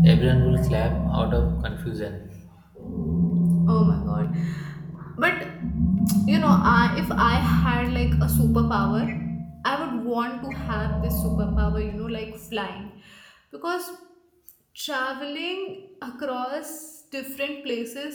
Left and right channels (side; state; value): both; identical; correlation 1.00